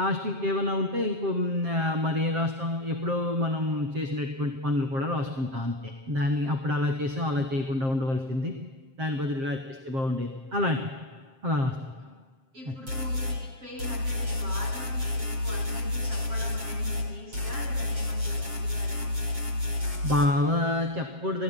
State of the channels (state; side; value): late; left; 7.5 ms